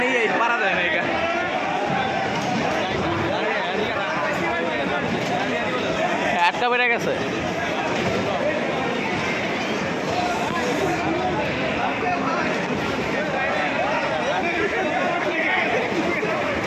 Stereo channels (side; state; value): both; identical; correlation 1.00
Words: হয় পারা যায় না। এটা আটকা বেড়ে গেছে।